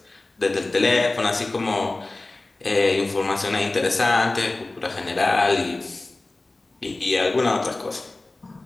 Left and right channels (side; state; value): right; quieter; 3.0 dB